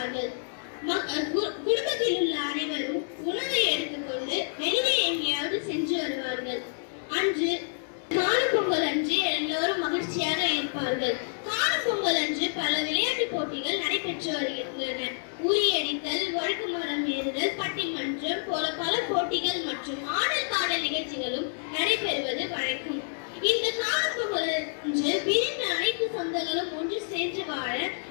குடும்பத்தில் உள்ள அனைவரும் உணவை எடுத்துக்கொண்டு வெளியே எங்கேயாவது சென்று வருவார்கள். அன்று காணும் பொங்கல் அன்று எல்லோரும் மகிழ்ச்சியாக இருப்பார்கள். காணும் பொங்கல் அன்று பல விளையாட்டு போட்டிகள் நடைபெற்று வருகின்றன. உரியடித்தல், வழுக்கு மரம் ஏறுதல், பட்டிமன்றம் போல பல போட்டிகள் மற்றும் ஆடல் பாடல் நிகழ்ச்சிகளும் நடைபெறுவது வழக்கம். இந்த காணும் பொங்கல் அன்று பிரிந்த அனைத்து சொந்தங்களும் ஒன்று சேர்ந்து வாழ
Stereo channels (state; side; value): silent; right; digital silence